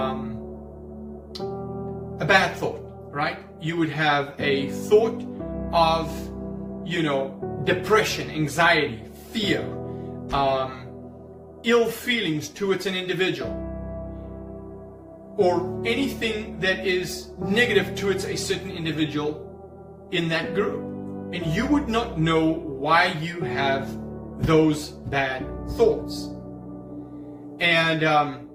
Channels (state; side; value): identical; both; correlation 1.00